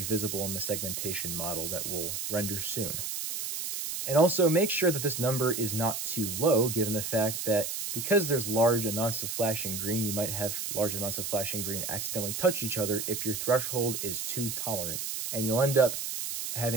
visible in the segmentation model that we'll render soon. And also make sure that this number is not too low, given the fact that because there's large amounts of flashing green, you might have large amounts of flashing green accidentally touch each other if your threshold is too tolerant. And you'll end up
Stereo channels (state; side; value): noise; right; hiss, 4 dB below the sound